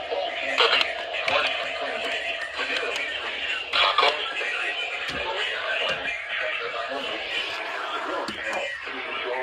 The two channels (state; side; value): identical; both; correlation 1.00